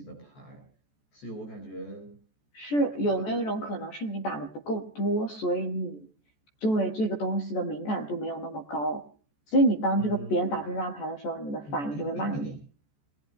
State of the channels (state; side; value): late; right; 14 ms